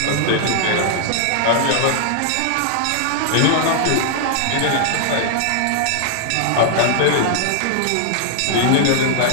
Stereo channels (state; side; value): different; both; correlation 0.00